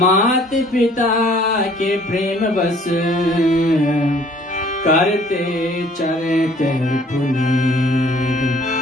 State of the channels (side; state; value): both; normal; correlation 0.56